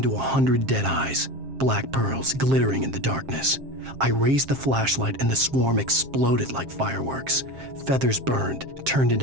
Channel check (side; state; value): left; late; 7.5 ms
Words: 100 dead eyes, black pearls glittering in the darkness. I raised the flashlight and the swarm exploded like fireworks. Feathers burned, turned